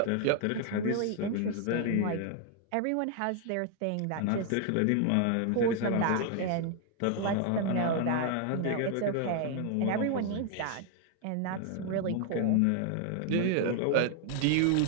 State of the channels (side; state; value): both; different; correlation 0.00